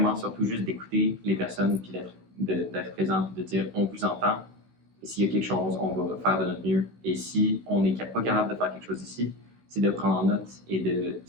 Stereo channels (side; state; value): left; late; 16 ms